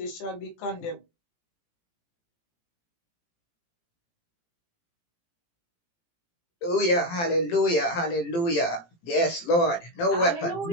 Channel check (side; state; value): right; late; 18 ms